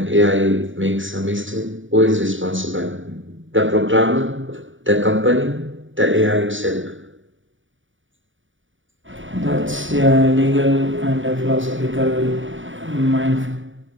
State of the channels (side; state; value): left; late; 0.56 ms